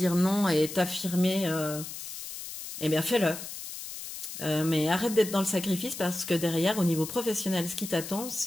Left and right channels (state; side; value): noise; left; hiss, 9 dB below the sound